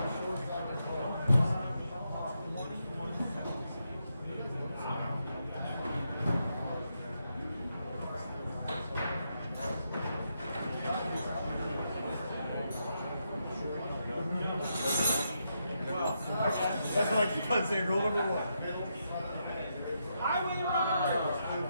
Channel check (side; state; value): both; inverted; correlation -0.82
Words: That's what I keep on saying. Rule number 1. Highway runner.